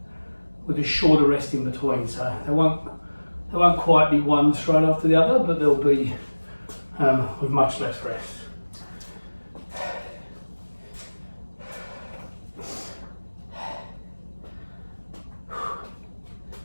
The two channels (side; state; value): both; inverted; correlation -1.00